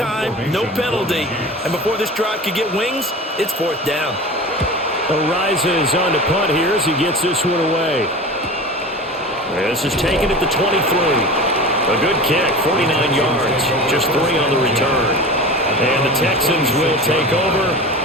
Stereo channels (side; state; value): both; normal; correlation 0.33